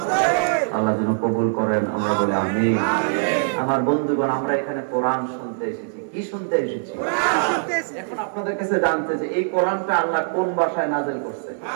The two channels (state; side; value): silent; left; 64 dB below the other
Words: আল্লাহ যেন কবুল করেন, আমরা বলি আমিন। আমার বন্ধুগণ, আমরা এখানে কোরআন শুনতে এসেছি। কি শুনতে এসেছি? এখন আপনাদের কাছে জানতে যে এই কোরআনটা আল্লাহ কোন ভাষায় নাযিল করছে?